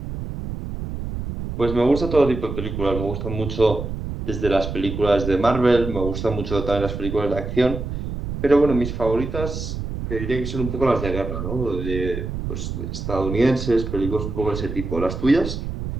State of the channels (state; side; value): noise; right; rumble, 6 dB below the sound